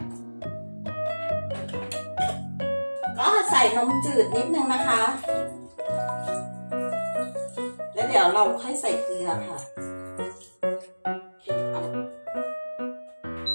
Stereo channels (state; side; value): inverted; both; correlation -1.00